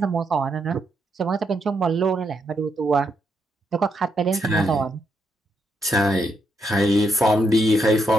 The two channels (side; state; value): both; normal; correlation 0.78